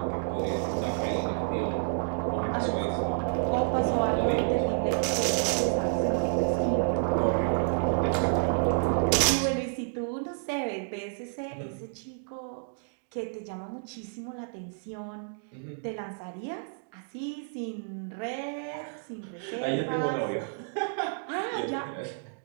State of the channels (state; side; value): silent; left; digital silence